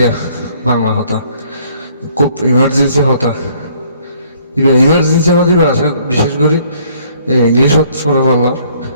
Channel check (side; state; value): both; inverted; correlation -0.62